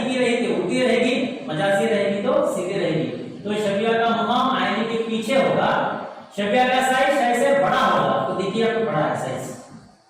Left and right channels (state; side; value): identical; both; correlation 1.00